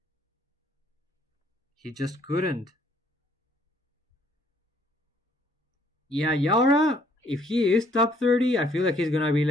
He just couldn't. Yeah, Yara, if he is top 30, I feel like he's gonna be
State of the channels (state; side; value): normal; both; correlation 0.64